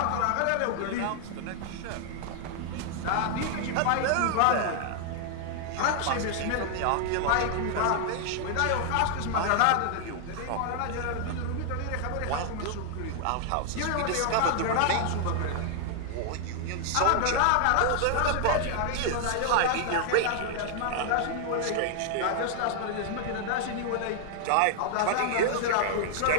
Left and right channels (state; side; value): different; both; correlation 0.00